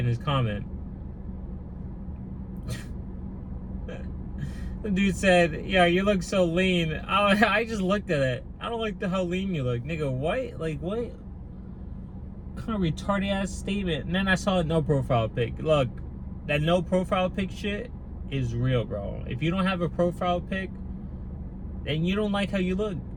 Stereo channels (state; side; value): identical; both; correlation 1.00